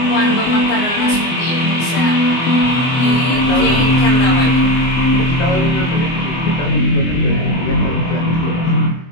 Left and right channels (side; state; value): right; late; 24 ms